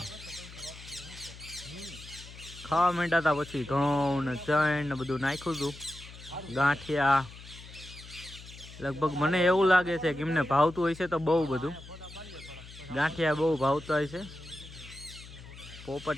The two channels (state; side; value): noise; left; hum, 16 dB below the sound